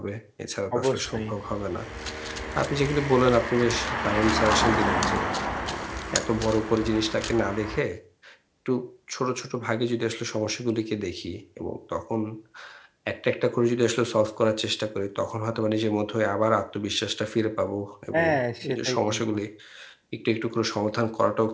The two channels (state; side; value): identical; both; correlation 1.00